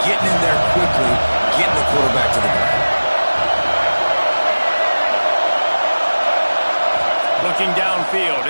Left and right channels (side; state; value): both; inverted; correlation -1.00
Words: getting in there quickly, getting the quarterback to the ground. Looking downfield,